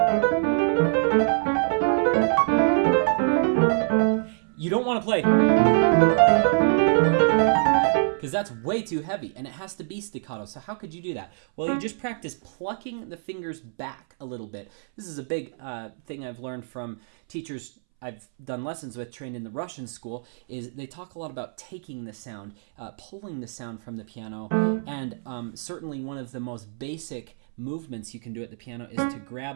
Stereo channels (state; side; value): silent; left; 62 dB below the other